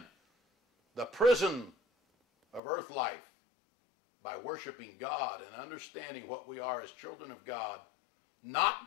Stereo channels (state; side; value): drops out; right; at 2.6 s